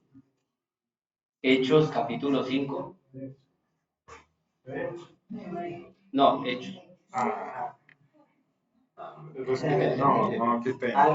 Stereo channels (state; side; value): identical; both; correlation 1.00